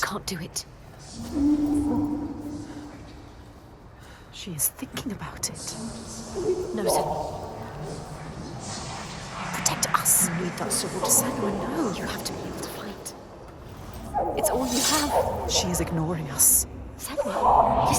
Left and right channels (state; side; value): identical; both; correlation 1.00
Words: do it. She is thinking about it. No, Senua. Protect us. You need that sword. Senua, no. You have to be able to fight. It's all you have. She is ignoring us. Senua,